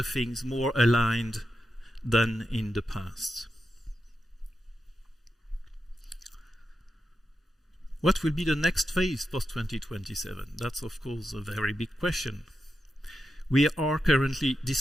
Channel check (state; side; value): normal; both; correlation 0.88